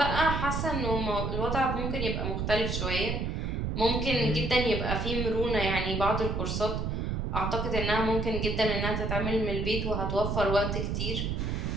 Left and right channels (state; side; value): noise; right; rumble, 1 dB below the sound